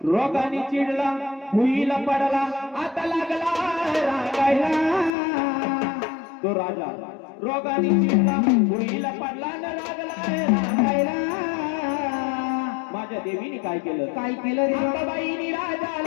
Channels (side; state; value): right; drops out; at 5.1 s